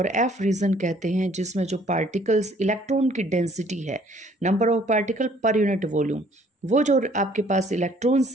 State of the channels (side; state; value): both; normal; correlation 0.60